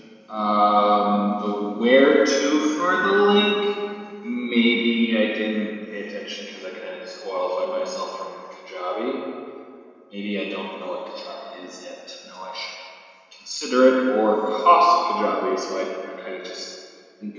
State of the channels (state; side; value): identical; both; correlation 1.00